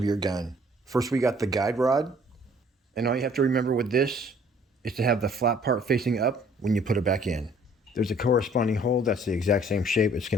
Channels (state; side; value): normal; both; correlation 0.58